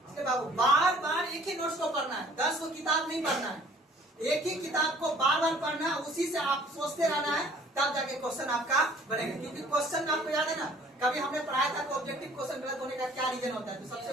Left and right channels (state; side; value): normal; both; correlation 0.55